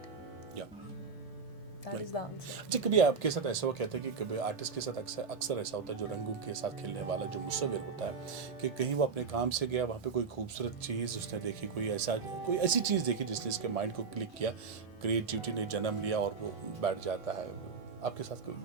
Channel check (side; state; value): left; quieter; 5.3 dB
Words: That is the answer. अच्छा, कभी आपके साथ ऐसा हुआ, कहते हैं कि कभी आर्टिस्ट के साथ अक्सर ऐसा होता है, जो रंगों के साथ खेलने वाला जो मुसव्विर होता है, कि कहीं वो अपने काम से गया, वहाँ पे कोई खूबसूरत चीज़ उसने देखी, कोई ऐसी चीज़ देखी जिसने इसके माइंड को क्लिक किया, क्रिएटिविटी ने जन्म लिया और वो बैठ जाता है। आपके साथ